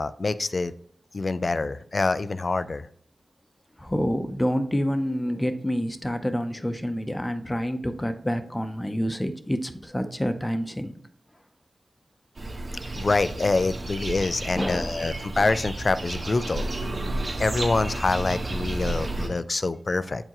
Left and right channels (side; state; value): both; normal; correlation 0.96